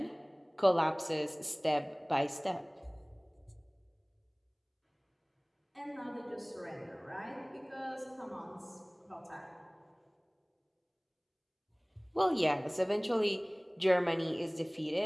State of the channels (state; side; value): identical; both; correlation 1.00